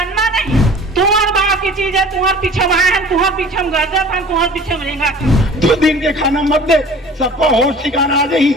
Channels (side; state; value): both; normal; correlation 0.45